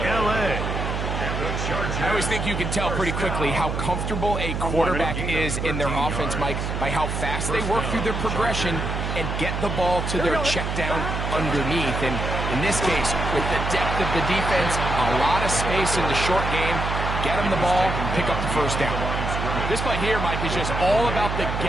L.A. I always think you can tell pretty quickly how comfortable a quarterback is in their offense, Mike, by how fast they work through their progression and get the ball to their check down underneath. And in this case, with the depth of the defense, a lot of space in the short game, get them the ball, pick up the first down. This play here, Mike, is just all about the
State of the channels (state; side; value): noise; right; hum, 3 dB below the sound